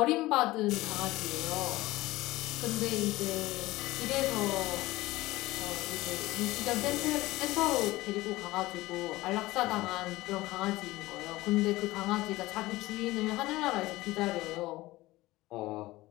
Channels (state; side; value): quieter; right; 18.5 dB